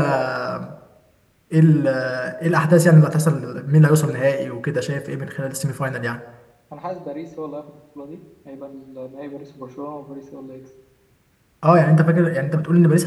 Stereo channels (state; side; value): identical; both; correlation 1.00